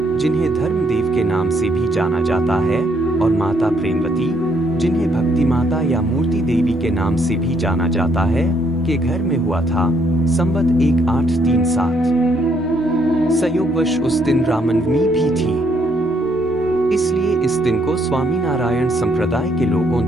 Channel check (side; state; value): both; normal; correlation 0.71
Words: जिन्हें धर्मदेव के नाम से भी जाना जाता है, और माता प्रेमवती, जिन्हें भक्ति माता या मूर्ति देवी के नाम से भी जाना जाता है, के घर में हुआ था। संवत 1837। संयोगवश उस दिन रामनवमी भी थी, इसलिए इस दिन को स्वामीनारायण संप्रदाय के लोगों